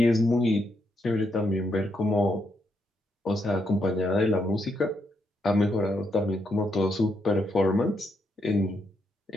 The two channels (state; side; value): normal; both; correlation 0.79